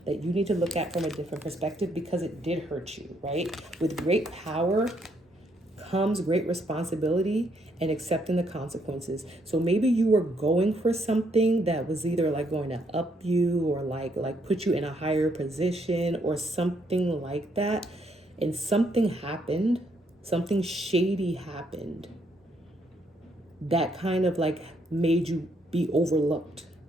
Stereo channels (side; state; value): both; normal; correlation 0.72